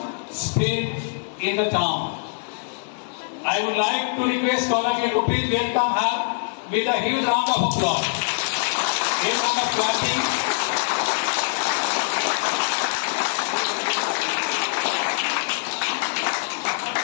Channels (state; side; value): silent; right; digital silence